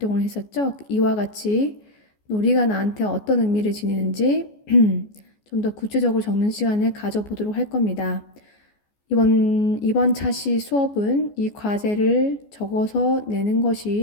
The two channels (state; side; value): late; right; 14 ms